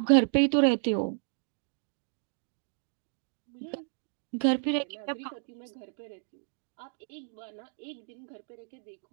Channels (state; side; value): silent; left; digital silence